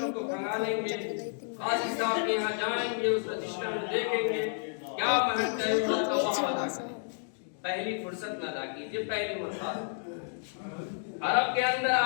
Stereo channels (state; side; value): silent; right; digital silence